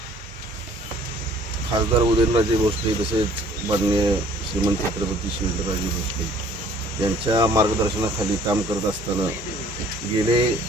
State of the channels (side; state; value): both; normal; correlation 0.55